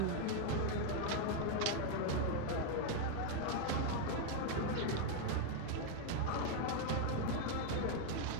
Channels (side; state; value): both; different; correlation 0.00